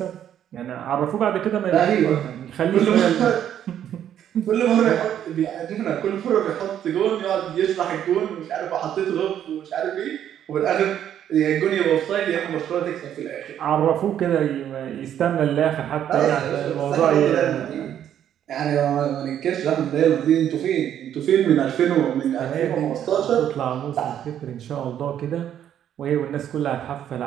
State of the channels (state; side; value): quieter; left; 10.2 dB